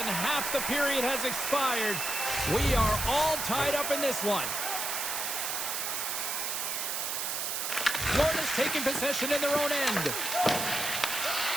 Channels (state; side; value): noise; right; hiss, 1 dB below the sound